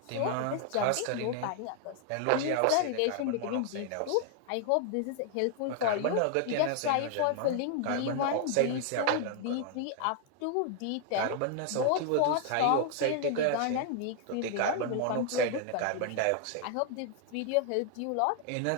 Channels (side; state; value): both; different; correlation 0.00